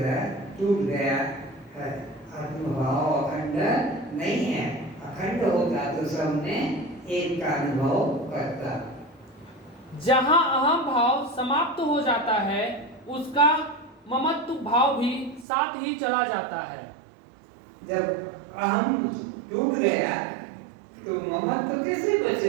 टूट गया है। आत्मभाव अखंड नहीं है, अखंड होता तो सब में एक का अनुभव करता। जहाँ अहम भाव समाप्त हो जाता है, उसका ममत्व भाव भी साथ ही चला जाता है। जब अहम टूट गया तो ममत्व कैसे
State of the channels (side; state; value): left; drops out; at 15.5 s